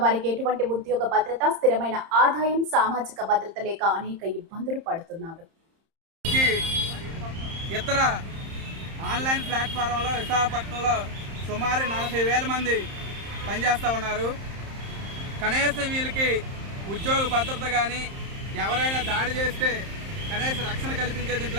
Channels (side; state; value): left; late; 30 ms